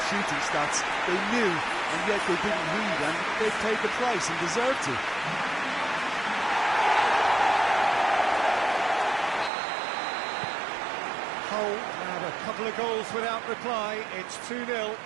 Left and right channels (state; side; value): drops out; left; at 9.5 s